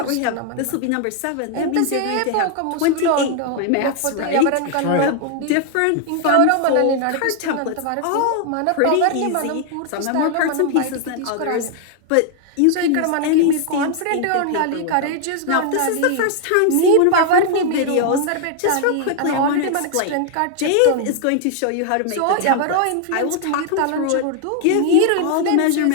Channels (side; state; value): both; different; correlation 0.00